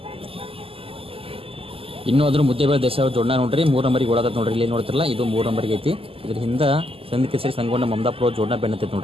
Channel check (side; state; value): left; late; 0.27 ms